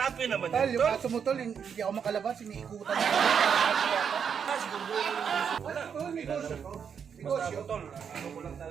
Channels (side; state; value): left; quieter; 7.2 dB